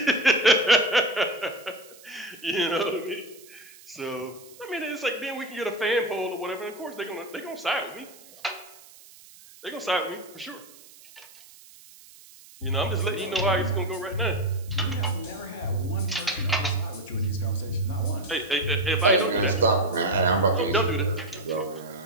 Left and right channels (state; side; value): noise; right; hiss, 22 dB below the sound